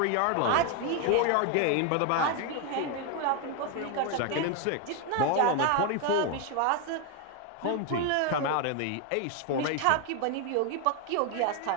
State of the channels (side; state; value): both; different; correlation 0.01